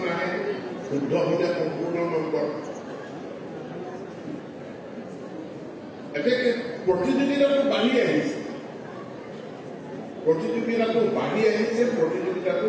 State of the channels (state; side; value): identical; both; correlation 1.00